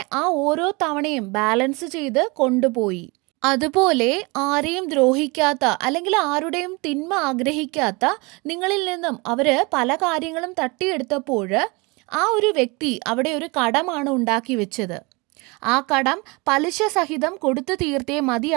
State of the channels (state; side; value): quieter; left; 27.2 dB